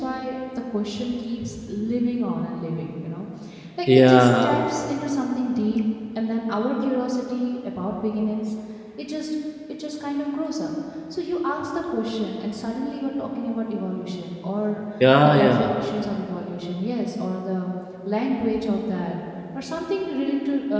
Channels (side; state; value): both; identical; correlation 1.00